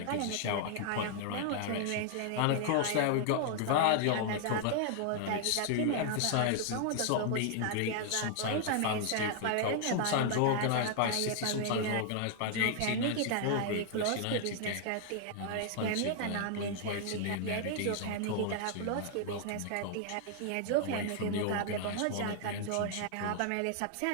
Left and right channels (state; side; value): different; both; correlation 0.00